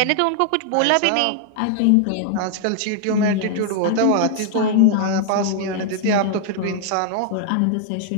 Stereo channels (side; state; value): both; different; correlation 0.00